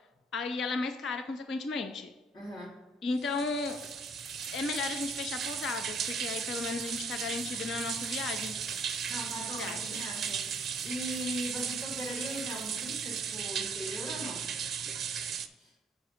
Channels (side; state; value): both; normal; correlation 0.62